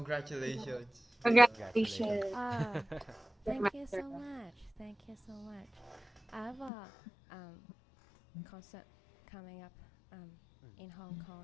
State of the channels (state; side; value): drops out; right; at 6.7 s